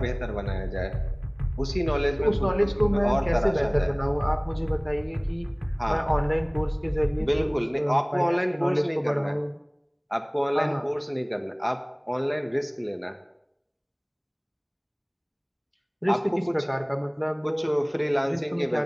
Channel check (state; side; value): identical; both; correlation 1.00